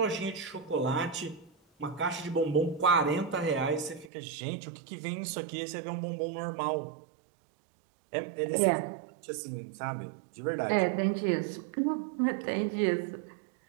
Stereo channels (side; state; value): left; drops out; at 4.1 s